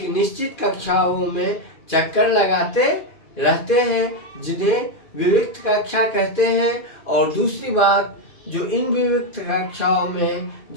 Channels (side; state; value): right; late; 2.5 ms